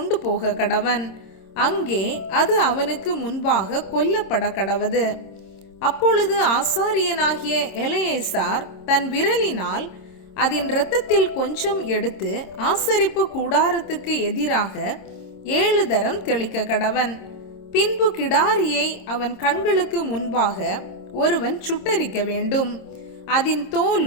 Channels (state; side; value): late; right; 26 ms